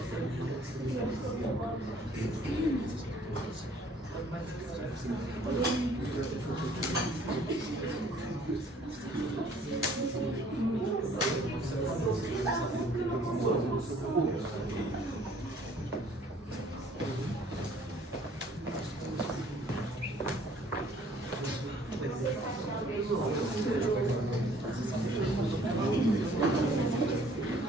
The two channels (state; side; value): normal; both; correlation 0.57